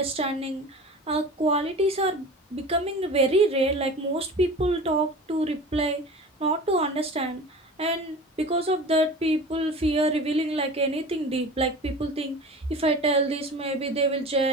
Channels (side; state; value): both; normal; correlation 0.36